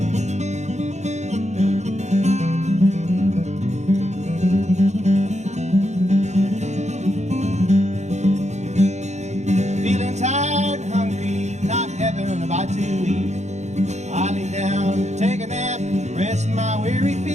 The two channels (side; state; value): left; late; 0.33 ms